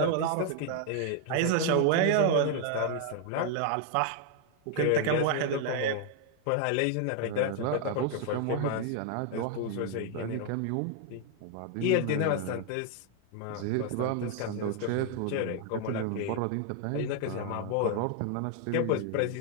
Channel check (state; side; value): different; both; correlation 0.01